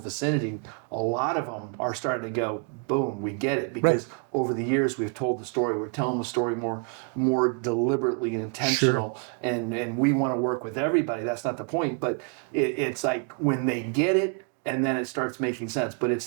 a lot of them are starting to go, boom, we get it, because over the years we've told the story, we're telling the story more deliberately and intentional, and we want to work with everybody. That's not the point, but it's like when they get it, and then it starts making sense. But it's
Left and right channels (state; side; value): quieter; left; 39.6 dB